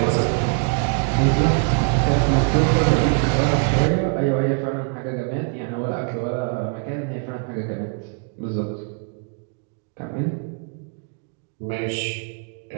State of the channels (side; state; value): left; quieter; 38.4 dB